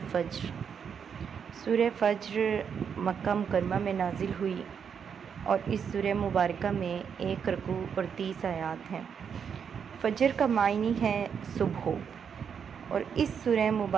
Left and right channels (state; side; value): quieter; left; 7.1 dB